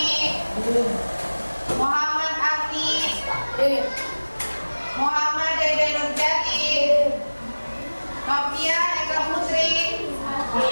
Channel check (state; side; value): inverted; both; correlation -1.00